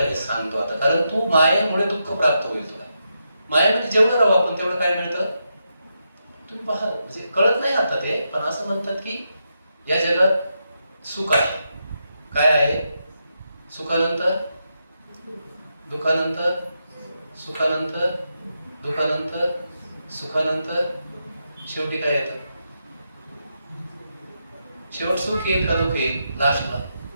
हे सांगतो आता, कारण तू मायेमुळे दुःख प्राप्त होईल तुला. मायेमध्ये जेवढं राहू आपण तेवढं काय मिळतं तुम्ही पहा. म्हणजे कळत नाही आता ते, पण असं म्हणतात की या जगात सुख आहे. काय आहे? सुखानंतर दुःखानंतर, सुखानंतर दुःखानंतर, सुखानंतर शेवटी काय येतं? शेवट सुख येईल का दुःख येईल? लास्टला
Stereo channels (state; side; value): inverted; both; correlation -0.84